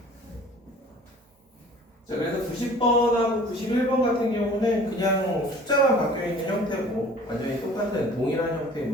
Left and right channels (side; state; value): both; normal; correlation 0.48